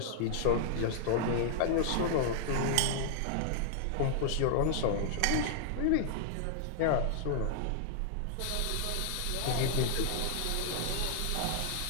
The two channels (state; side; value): different; both; correlation -0.01